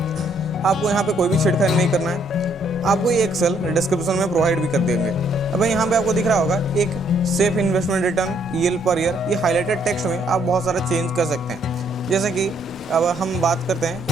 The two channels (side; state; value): both; normal; correlation 0.69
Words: आपको यहाँ पे कोई भी छेड़खानी नहीं करना है। आपको ये एक्सेल डिस्क्रिप्शन में प्रोवाइड भी कर देंगे। अब यहाँ पे आपको दिख रहा होगा एक safe investment return EL per year. ये हाईलाइटेड टेक्स्ट में आप बहुत सारा चेंज कर सकते हैं। जैसे कि अब हम बात करते हैं